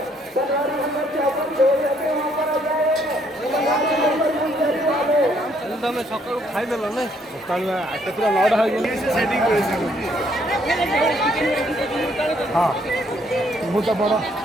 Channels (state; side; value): normal; both; correlation 0.68